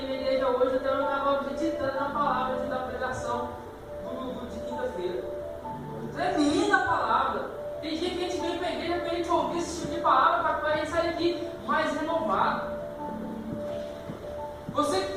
na igreja hoje, até eu estava meditando na palavra da pregação do culto de quinta-feira. Tremenda a palavra. Tem dia que a gente vem para a igreja para a gente ouvir esse tipo de palavra, para a gente sair aqui mais renovado. Você que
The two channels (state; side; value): identical; both; correlation 1.00